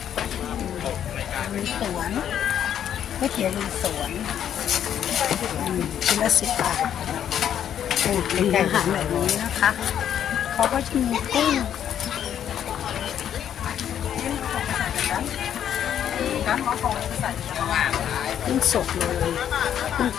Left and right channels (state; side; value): quieter; right; 9.7 dB